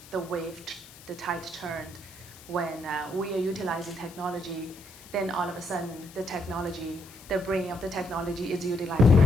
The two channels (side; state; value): left; noise; hiss, 20 dB below the sound